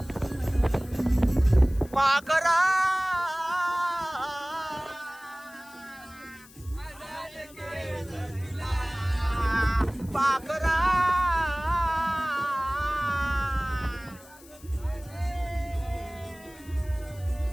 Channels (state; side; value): noise; left; hiss, 23 dB below the sound